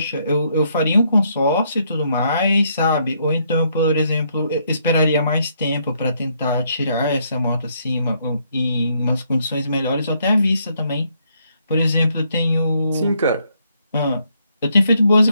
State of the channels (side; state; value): both; inverted; correlation -0.72